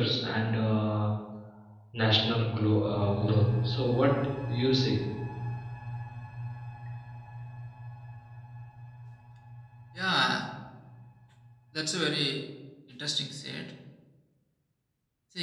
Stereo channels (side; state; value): both; identical; correlation 1.00